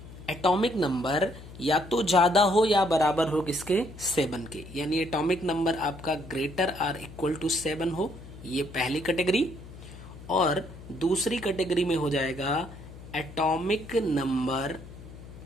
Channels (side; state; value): left; noise; hum, 16 dB below the sound